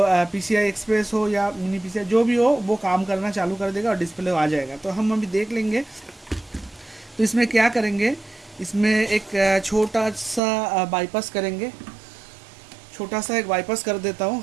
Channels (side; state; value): left; drops out; at 10.4 s